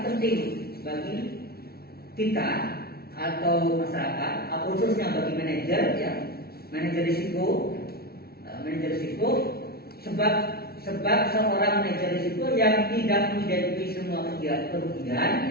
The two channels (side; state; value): right; late; 0.45 ms